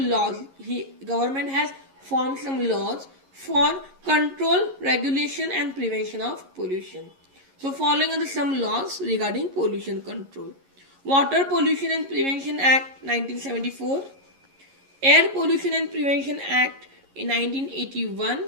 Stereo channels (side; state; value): left; late; 11 ms